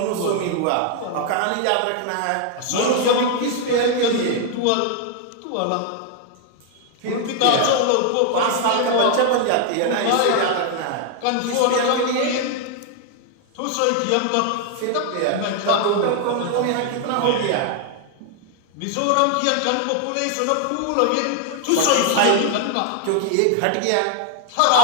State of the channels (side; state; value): both; different; correlation 0.00